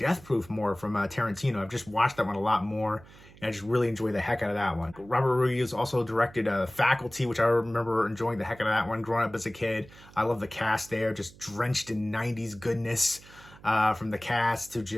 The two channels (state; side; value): noise; right; hum, 22 dB below the sound